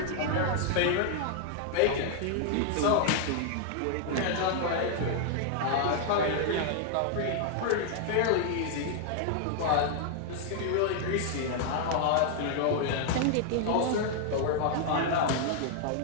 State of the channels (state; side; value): different; both; correlation 0.00